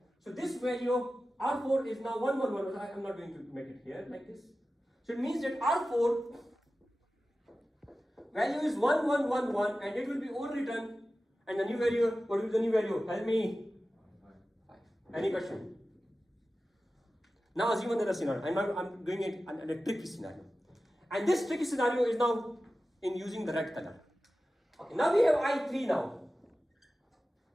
So this value of R4 is now 111. I am not going to make it here like this. So it means that R4 value is 1111 and it will be overwritten. And the new value, what will be the new value? Help me. 5. Any question? Now assume another scenario. I'm doing it in a tricky scenario. And this tricky scenario is now in using the red color. Okay, now we have I3 now.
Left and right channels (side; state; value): both; normal; correlation 0.95